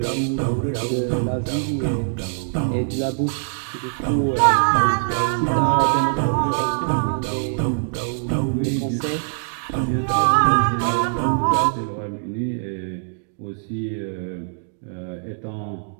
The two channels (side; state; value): left; silent; digital silence